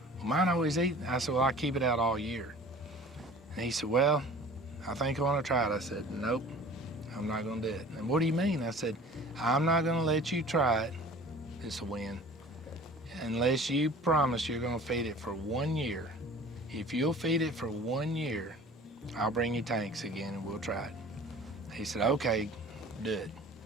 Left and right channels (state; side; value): normal; both; correlation 0.44